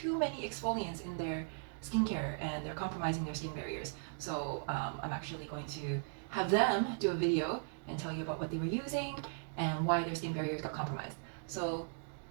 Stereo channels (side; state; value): left; silent; digital silence